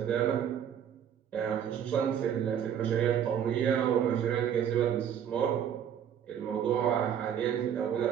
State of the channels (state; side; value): quieter; left; 9.0 dB